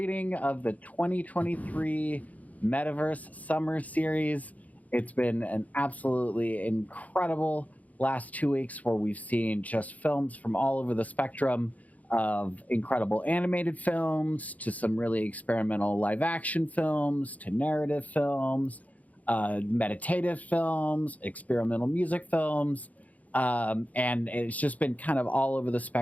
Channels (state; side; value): late; right; 0.074 ms